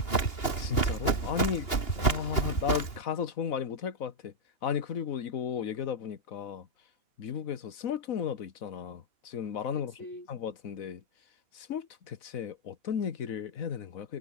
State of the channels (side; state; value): right; late; 2.8 ms